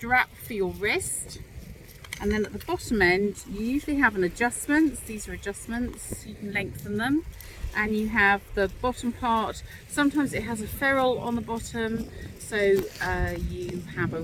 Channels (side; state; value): both; identical; correlation 1.00